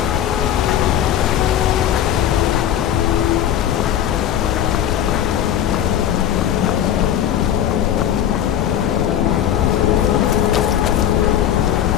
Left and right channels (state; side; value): quieter; right; 10.5 dB